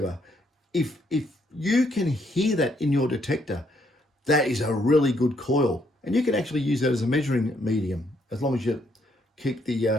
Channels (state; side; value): normal; both; correlation 0.72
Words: If you can hear that in your detector, that is a really good coil, and you can actually use that as a measuring medium as long as you keep the